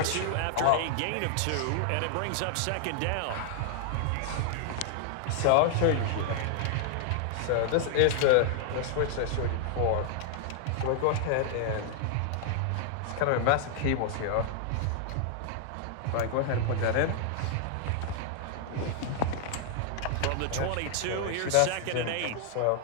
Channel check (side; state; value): both; different; correlation 0.00